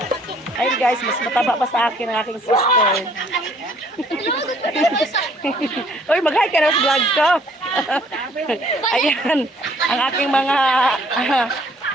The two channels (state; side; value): normal; both; correlation 0.61